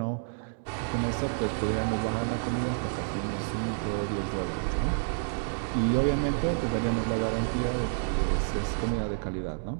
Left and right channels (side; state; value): left; silent; digital silence